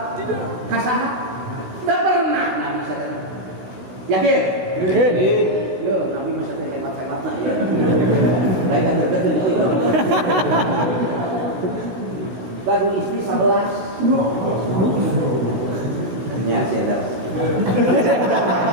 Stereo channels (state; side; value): late; left; 16 ms